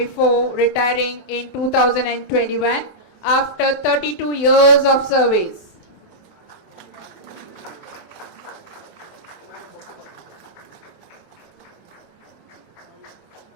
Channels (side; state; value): right; late; 24 ms